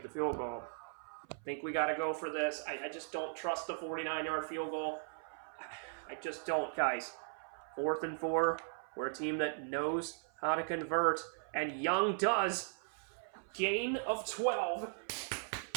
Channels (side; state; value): left; silent; 52 dB below the other